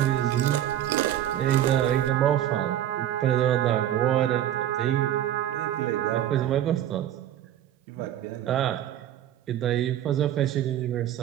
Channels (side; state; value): left; quieter; 11.7 dB